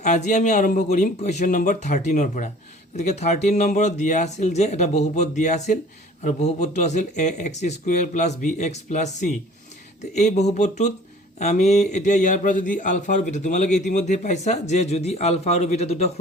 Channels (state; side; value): normal; both; correlation 0.49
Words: আজি আমি আৰম্ভ কৰিম কুৱেশ্যন নম্বৰ 13ৰ পৰা। গতিকে 13 নম্বৰত দিয়া আছিল যে এটা বহুপদ দিয়া আছিল আৰু বহুপদটো আছিল ax² + bx + c। তো এই বহুপদটোত আমি এতিয়া ইয়াৰ পৰা যদি আলফা আৰু বিটা, তোমালোকে ইতিমধ্যে পাইছা যে যদি আলফা আৰু বিটা দুটা